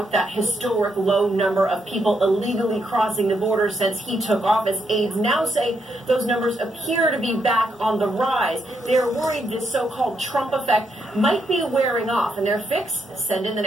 that historic low number of people illegally crossing the border since he took office. Aides now say those numbers appear to be back on the rise. They're worried this so-called Trump effect might be wearing off, and their fix: send in the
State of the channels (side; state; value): both; normal; correlation 0.78